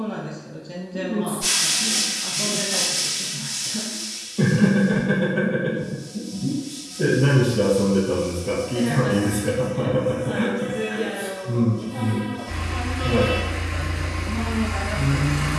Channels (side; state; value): both; identical; correlation 1.00